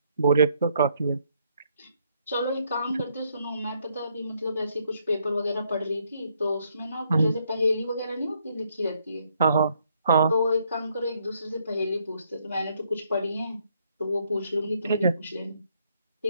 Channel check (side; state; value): both; inverted; correlation -0.71